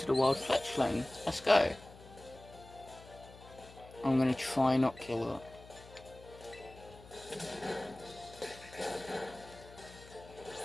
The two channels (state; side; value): noise; left; hum, 19 dB below the sound